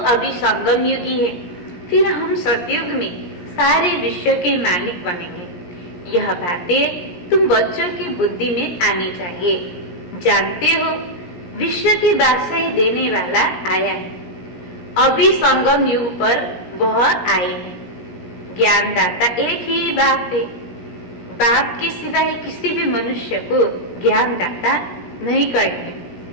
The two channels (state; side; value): late; right; 17 ms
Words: अभी संगम युगी है। फिर हम सतयुग में सारे विश्व के मालिक बनेंगे। यह बातें तुम बच्चों की बुद्धि में आनी चाहिए। जानते हो विश्व की बादशाही देने वाला आया है। अभी संगम युग पर वह आए हैं। ज्ञानदाता एक ही बाप है। बाप के सिवाय किसी भी मनुष्य को ज्ञानदाता नहीं कहेंगे,